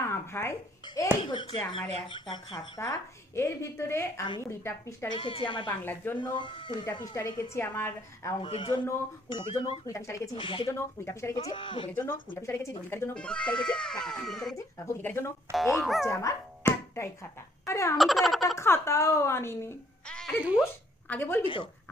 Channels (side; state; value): both; normal; correlation 0.66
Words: ভাই, এই হচ্ছে আমার একটা খাতা। এর ভিতরে আমি 20টা পৃষ্ঠা রেখেছি আমার বাংলার জন্য, 20টা পৃষ্ঠা রেখেছি আমার অঙ্কের জন্য, 20টার জন্য 20টা পৃষ্ঠা রেখেছি ইতিহাসের জন্য, 20টা পৃষ্ঠা রেখেছি ভূগোলের জন্য, 20টা পৃষ্ঠা রেখেছি দৈনিকের জন্য, 20টা পৃষ্ঠা রেখেছি ভৌতিকের জন্য। এই হচ্ছে আমার একটাই খাতা। আরে আমি তো একটা খাতাও আনিনি। আরে ধুস, আগে বলবি তো,